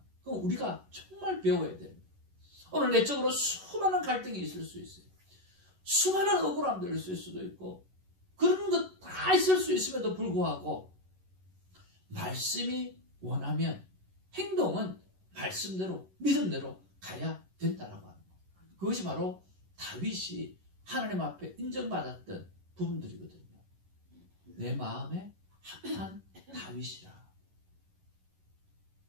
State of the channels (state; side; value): late; left; 11 ms